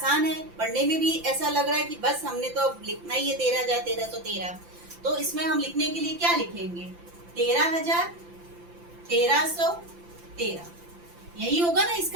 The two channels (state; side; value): late; left; 5.8 ms